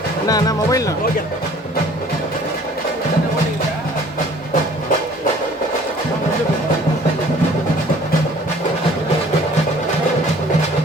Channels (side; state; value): both; normal; correlation 0.53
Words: அண்ணா மொபைல்ண்ணா ஓகே